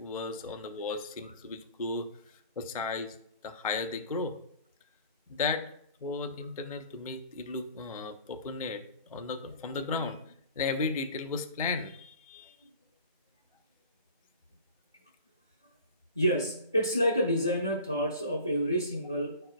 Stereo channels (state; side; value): inverted; both; correlation -0.44